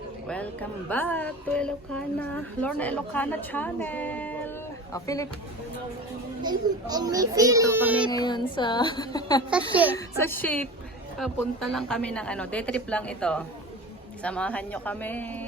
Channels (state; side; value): normal; both; correlation 0.34